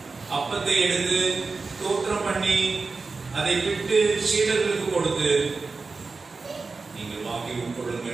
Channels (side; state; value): left; quieter; 4.1 dB